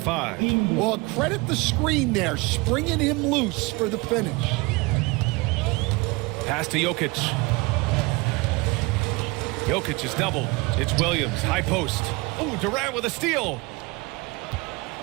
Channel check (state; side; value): quieter; left; 24.9 dB